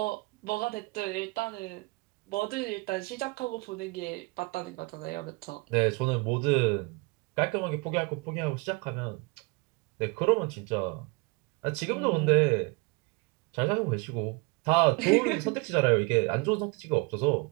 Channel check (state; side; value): quieter; left; 27.0 dB